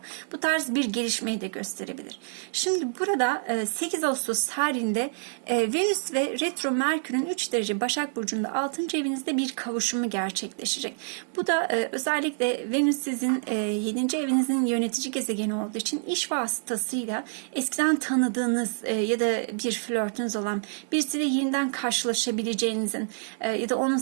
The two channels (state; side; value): silent; left; digital silence